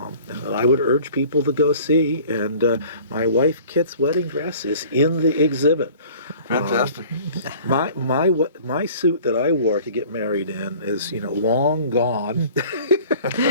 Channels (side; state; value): both; inverted; correlation -0.48